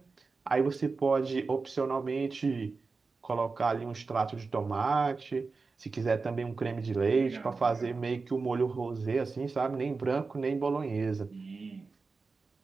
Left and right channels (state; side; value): quieter; left; 4.3 dB